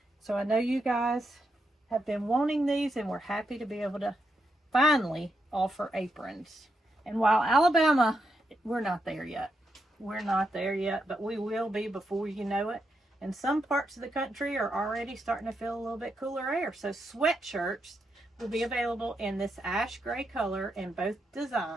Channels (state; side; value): normal; both; correlation 0.82